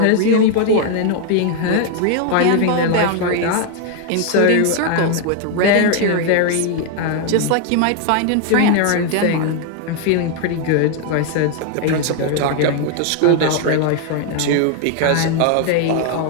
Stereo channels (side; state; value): both; different; correlation 0.00